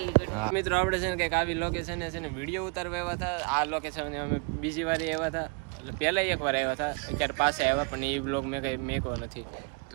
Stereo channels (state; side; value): quieter; left; 34.0 dB